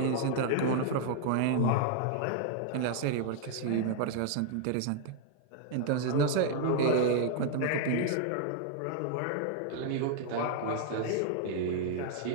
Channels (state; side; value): different; both; correlation -0.01